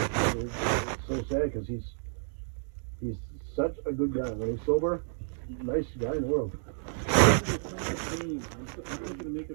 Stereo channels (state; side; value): silent; left; digital silence